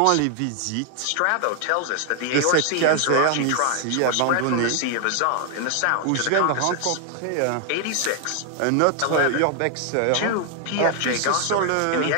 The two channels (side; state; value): both; different; correlation 0.00